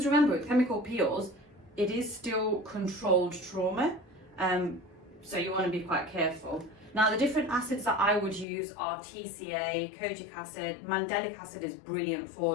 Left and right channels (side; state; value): right; drops out; at 8.5 s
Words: remember, with chemical peels, it is still controlled trauma. So you want to be quite careful. Now, the different acids that I would use are TCA, kojic acid, mandelic acid is brilliant for